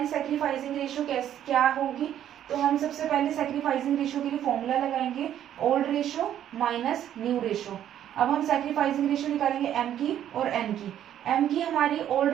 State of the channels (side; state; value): left; quieter; 10.8 dB